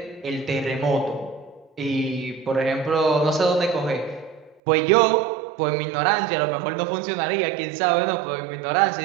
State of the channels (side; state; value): left; drops out; at 4.6 s